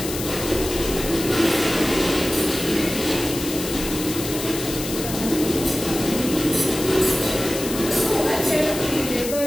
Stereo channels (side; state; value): left; noise; hiss, 7 dB below the sound